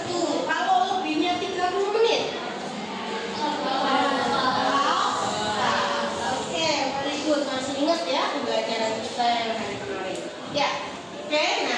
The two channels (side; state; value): both; identical; correlation 1.00